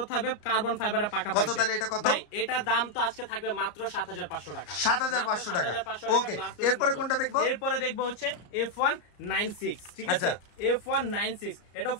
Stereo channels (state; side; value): late; right; 34 ms